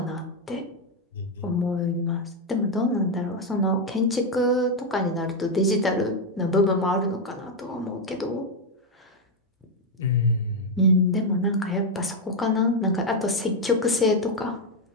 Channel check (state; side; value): normal; both; correlation 0.04